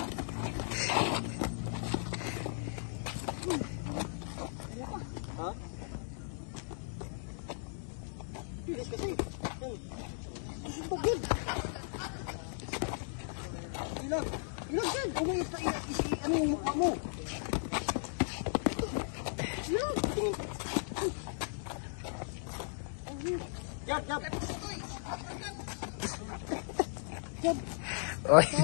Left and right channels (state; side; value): silent; right; digital silence